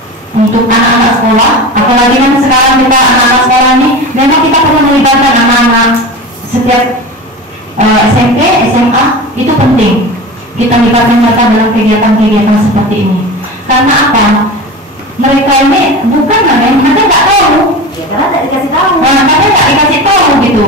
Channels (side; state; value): both; normal; correlation 0.30